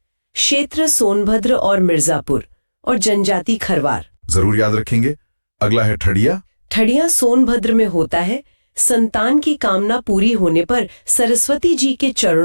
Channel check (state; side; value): inverted; both; correlation -1.00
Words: क्षेत्र सोनभद्र और मिर्जापुर और जनजाति खरवार। जरूर याद रखेंगे। अगला है ठड़िया। ठड़िया सोनभद्र में होता है। संतान की कामना पूरी होने पर सरस्वती जी के